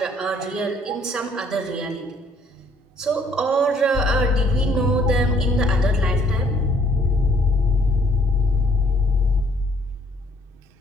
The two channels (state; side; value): normal; both; correlation 0.63